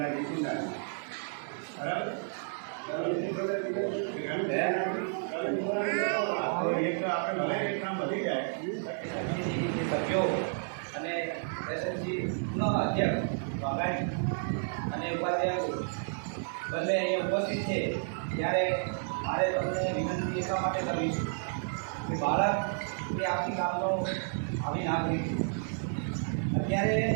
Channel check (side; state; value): left; silent; 57 dB below the other